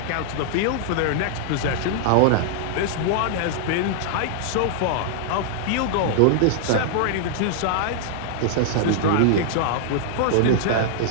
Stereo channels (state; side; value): different; both; correlation -0.01